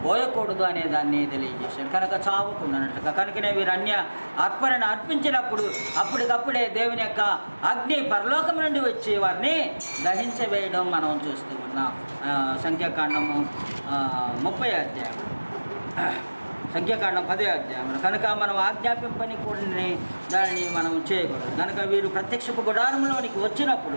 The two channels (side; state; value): both; inverted; correlation -1.00